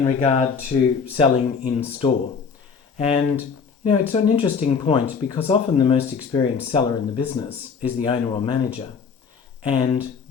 regard to selling in store. And, it's an interesting point because often the most experienced seller in the business is the owner or manager. And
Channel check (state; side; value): quieter; right; 5.8 dB